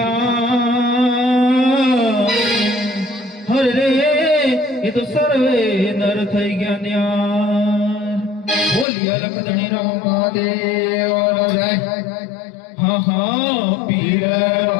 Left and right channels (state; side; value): drops out; right; at 8.8 s